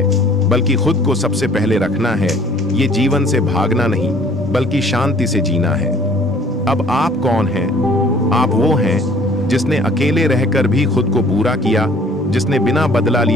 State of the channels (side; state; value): both; normal; correlation 0.55